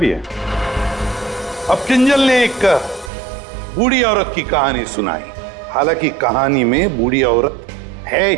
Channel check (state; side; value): drops out; left; at 3.1 s